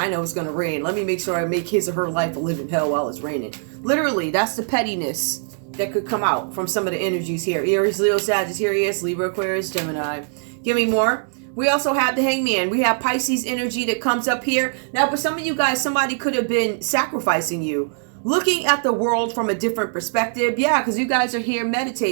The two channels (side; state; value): left; silent; digital silence